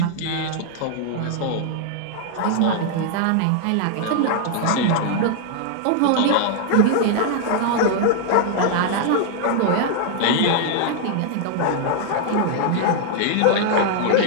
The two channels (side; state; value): both; different; correlation 0.00